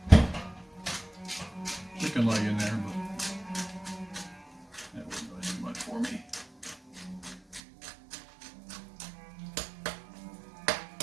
chicken leg in there, but that wouldn't really do much for me.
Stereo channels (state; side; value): drops out; left; at 7.6 s